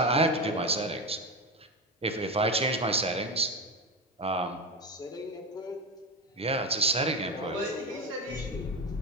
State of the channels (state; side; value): normal; both; correlation 0.19